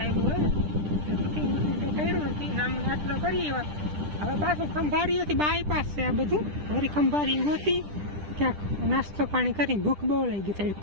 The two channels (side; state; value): left; late; 10 ms